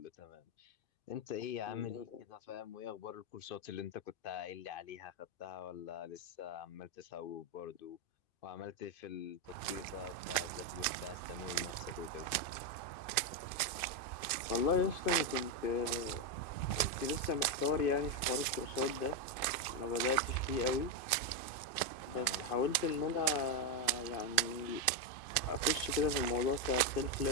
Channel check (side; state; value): right; late; 2.5 ms